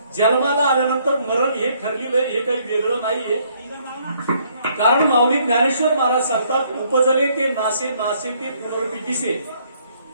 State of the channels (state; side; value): inverted; both; correlation -0.67